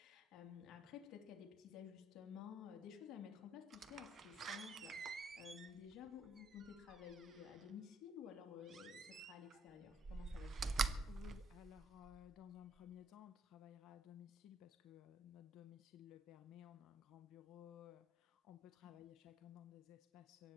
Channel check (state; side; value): normal; both; correlation 0.69